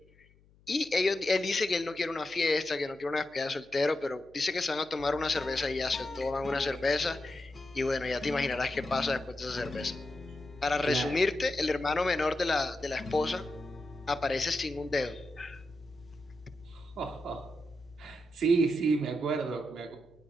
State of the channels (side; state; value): left; noise; hum, 30 dB below the sound